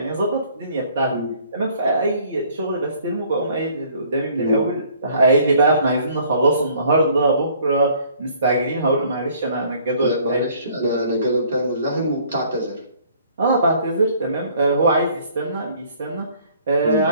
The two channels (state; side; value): inverted; both; correlation -0.58